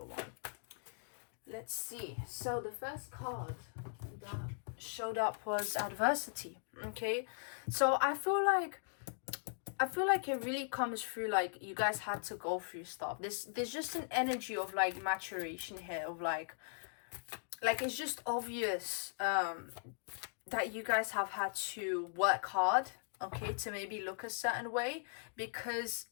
1. Let's see. So the first card that showed up was adversity. Okay, so I feel like it really comes through like you guys had to go through stuff. There's just an energy of like maturation here, of like it's just obvious that you guys have had to work hard, okay, to maybe look a certain way, because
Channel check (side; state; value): right; silent; digital silence